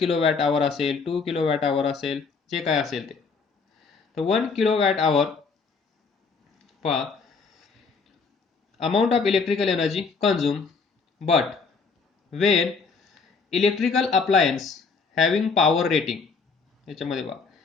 hour असेल, 2 किलोवॅट hour असेल, जे काय असेल ते. तर 1 किलोवॅट hour पहा amount of electrical energy consume, but when electrical appliance having power rating, याच्यामध्ये पहा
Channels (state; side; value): quieter; right; 4.9 dB